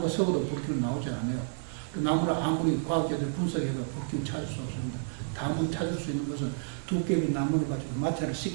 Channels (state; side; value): silent; left; digital silence